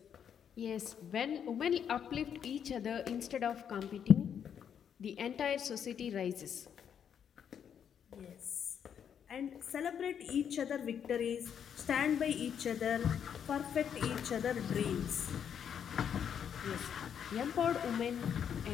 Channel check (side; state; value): right; quieter; 8.3 dB